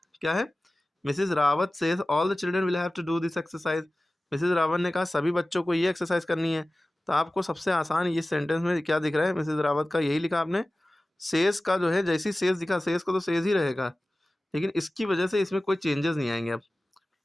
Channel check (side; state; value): both; normal; correlation 0.97